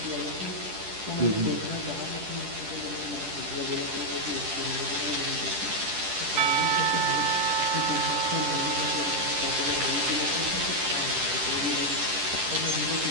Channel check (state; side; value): late; left; 10 ms